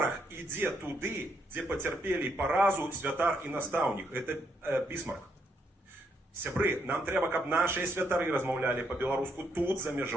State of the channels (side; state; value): both; normal; correlation 0.76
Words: ідзе туды, дзе пацярпелі паразу святар і настаўнік. Это Бісмарк. Сябры, нам трэба, каб нашыя святары размаўлялі па-беларуску тут, за